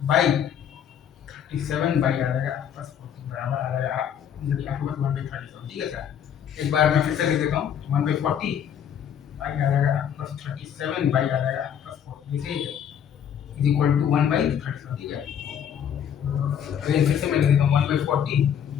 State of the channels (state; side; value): quieter; right; 8.8 dB